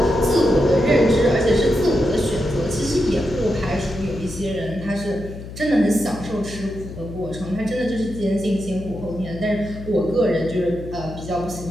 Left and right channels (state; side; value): noise; left; hum, 12 dB below the sound